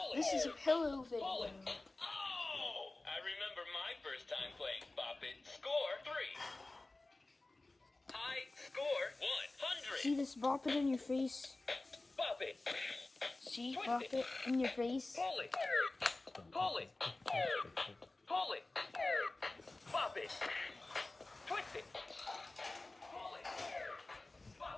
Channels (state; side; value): quieter; right; 3.0 dB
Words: This is a pillow video. Oh! I remember my first time playing Bop It. Score 3. High score 100. See this bop it in your face? Bop it. See, Twist bop it. it in your face. Pull it. Pull it. Pull it. Bop it. Twist it. Pull it.